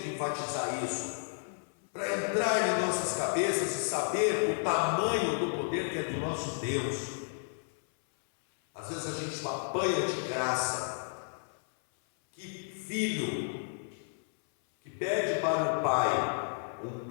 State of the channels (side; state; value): right; silent; 56 dB below the other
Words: enfatizar isso, para entrar em nossas cabeças e saber o tamanho do poder que é do nosso Deus. Às vezes a gente apanha de graça. Que filho que pede para o pai um